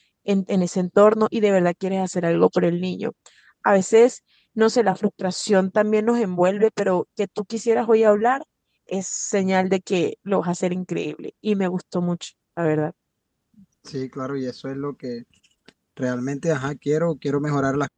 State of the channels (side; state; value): both; identical; correlation 1.00